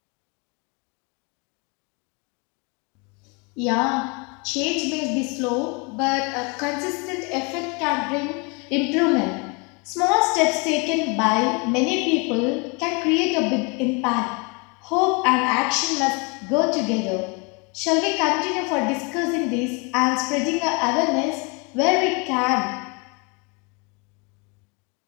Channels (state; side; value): quieter; right; 31.3 dB